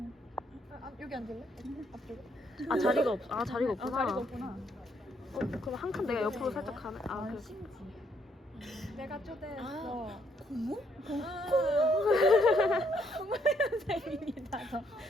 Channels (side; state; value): both; normal; correlation 0.71